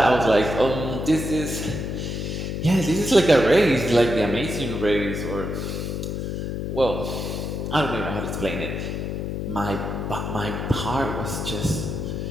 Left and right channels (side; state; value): left; noise; hum, 3 dB below the sound